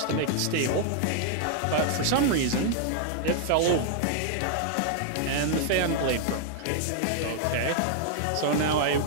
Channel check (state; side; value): different; both; correlation -0.01